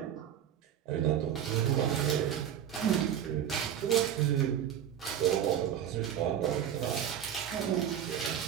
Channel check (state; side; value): quieter; left; 9.7 dB